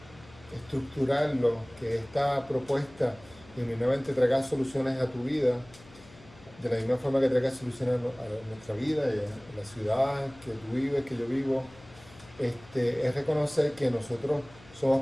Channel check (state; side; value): noise; left; hum, 23 dB below the sound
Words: estructurarlo, que esta propuesta genuinamente traiga soluciones a tu vida, de la misma forma que traiga soluciones a nuestra vida y a la ciudad que tú vives, que yo vivo, es reconocer que nosotros